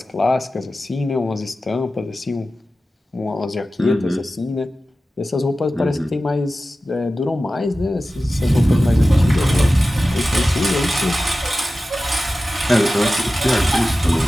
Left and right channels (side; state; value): both; normal; correlation 0.95